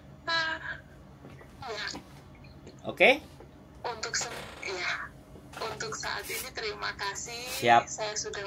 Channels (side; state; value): both; identical; correlation 1.00